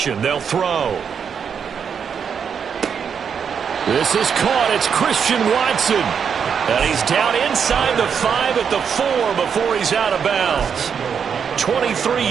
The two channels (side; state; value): left; quieter; 7.0 dB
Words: they'll throw. This is caught. It's Christian Watson. And he's down inside the 5 at the 4 before he's out of bounds. 23